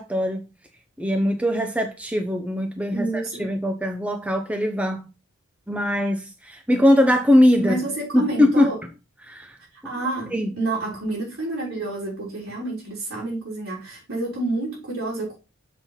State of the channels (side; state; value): both; normal; correlation 0.83